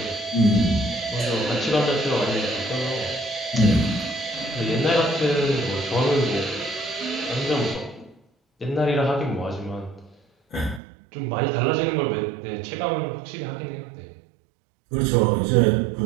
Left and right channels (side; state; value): left; drops out; at 10.8 s